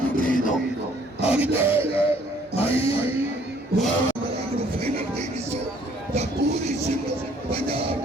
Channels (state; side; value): normal; both; correlation 0.61